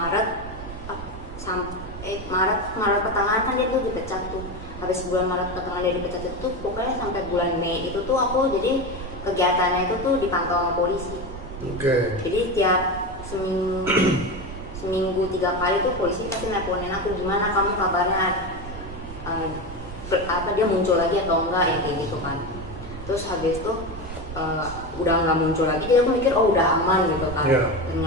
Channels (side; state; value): right; noise; rumble, 11 dB below the sound